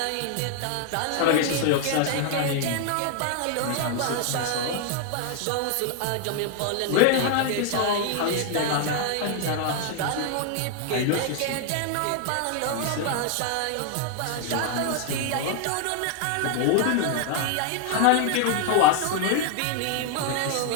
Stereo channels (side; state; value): both; different; correlation 0.00